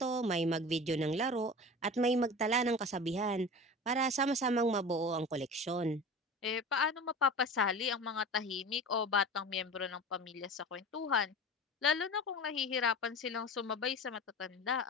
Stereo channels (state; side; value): normal; both; correlation 0.34